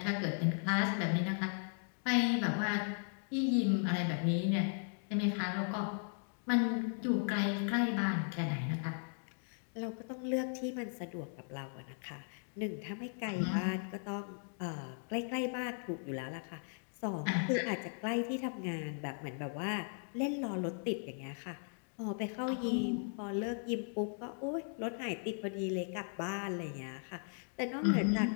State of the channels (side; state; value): right; silent; 53 dB below the other